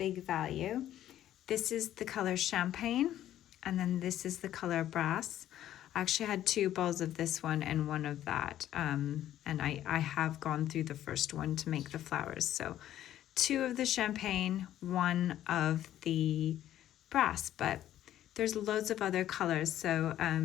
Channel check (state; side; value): quieter; right; 12.3 dB